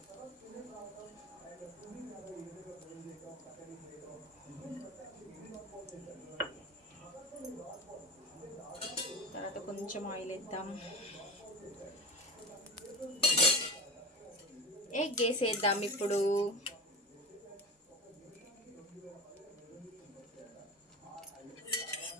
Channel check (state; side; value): normal; both; correlation 0.29